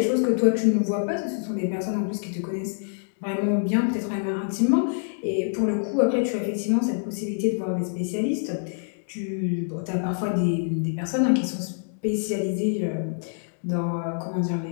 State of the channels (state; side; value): silent; right; digital silence